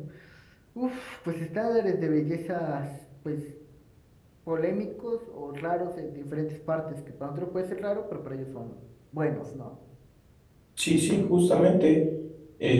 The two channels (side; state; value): both; identical; correlation 1.00